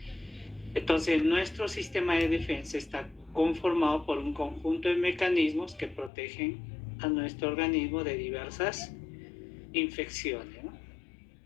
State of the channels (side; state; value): right; drops out; at 6.1 s